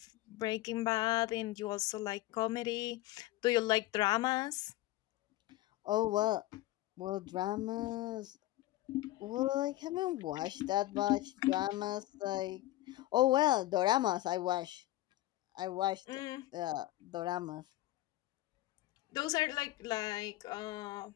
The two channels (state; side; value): quieter; right; 16.5 dB